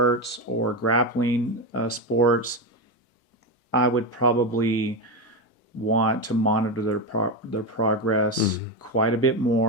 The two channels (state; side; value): normal; both; correlation 0.12